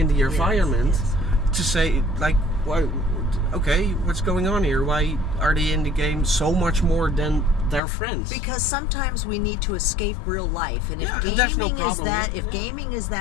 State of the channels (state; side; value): drops out; right; at 7.8 s